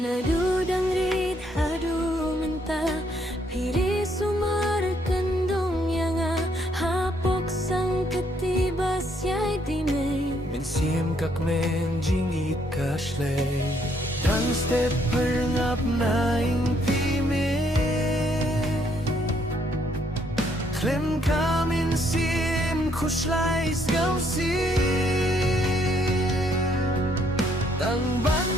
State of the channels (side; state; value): both; normal; correlation 0.70